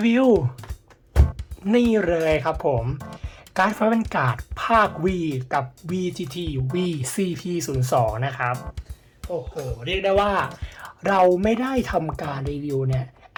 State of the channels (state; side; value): identical; both; correlation 1.00